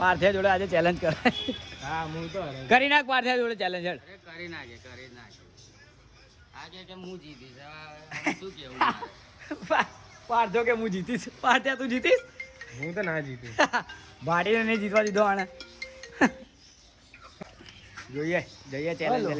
જોડે આજે ચેલેન્જ કરાય. હા, હું તો કરી નાખ પાર્થિયા જોડે ચેલેન્જ. કરી નાખે આજે કે હું જીતીશ. શું કેવું? પાર્થો કે હું જીતીશ. પાર્થિયા તું જીતીશ? હું તો ના જીતીશ. ભાડીને નહીં જીતવા દીધો આને. જોઈએ ચેલેન્જ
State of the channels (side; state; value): both; identical; correlation 1.00